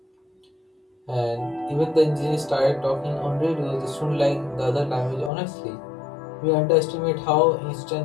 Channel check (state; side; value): drops out; right; at 5.3 s